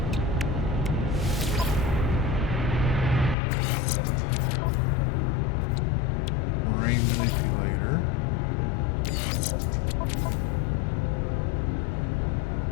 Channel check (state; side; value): drops out; right; at 3.4 s